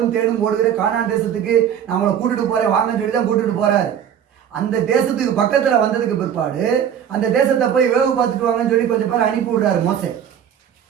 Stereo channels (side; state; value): left; quieter; 9.0 dB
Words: தேனும் ஓடுகிற கானான் தேசத்துக்கு நான் அவங்களை கூட்டிட்டு போறேன் வாங்கன்னு சொல்லி தான் கூட்டிட்டு போறாரு. அந்த தேசத்துக்கு பக்கத்துல வந்ததுக்கு பிற்பாடு அந்த தேசத்தை போய் வேவு பார்த்துட்டு வாங்கன்னு சொல்லி கொஞ்சம் பேர் அனுப்பி விடுறாரு. மோசே